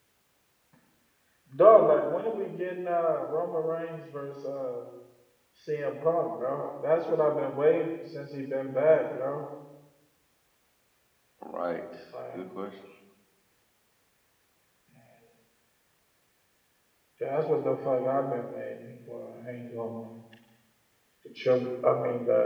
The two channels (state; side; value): identical; both; correlation 1.00